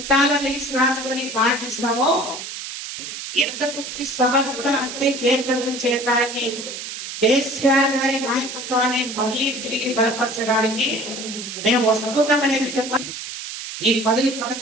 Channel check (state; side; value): noise; right; hiss, 8 dB below the sound